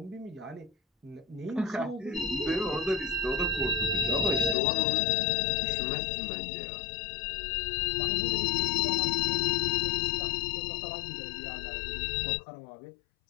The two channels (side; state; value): right; drops out; at 4.5 s